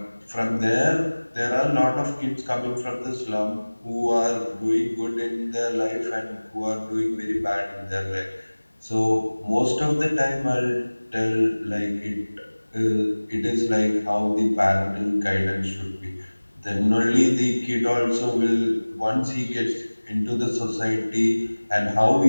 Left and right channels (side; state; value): both; inverted; correlation -1.00